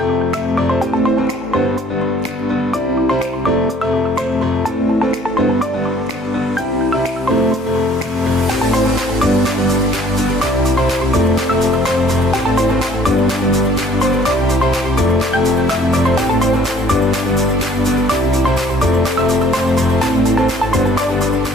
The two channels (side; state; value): both; normal; correlation 0.57